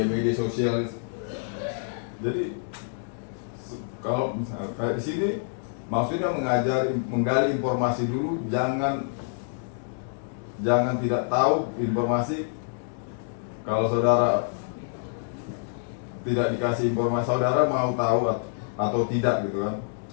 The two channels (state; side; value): silent; right; digital silence